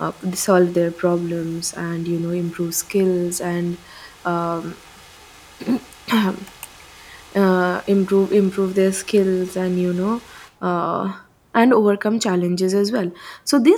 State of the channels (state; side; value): identical; both; correlation 1.00